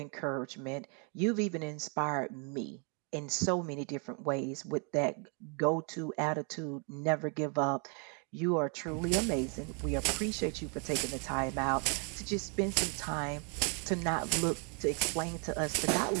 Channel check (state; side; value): quieter; left; 37.5 dB